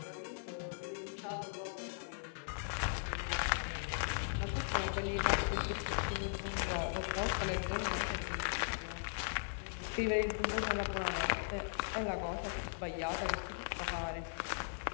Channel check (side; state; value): right; silent; digital silence